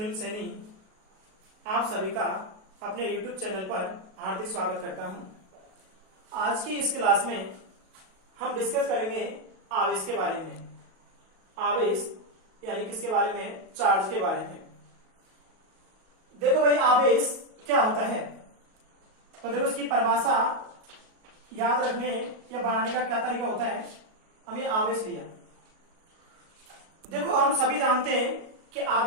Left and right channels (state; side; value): late; left; 37 ms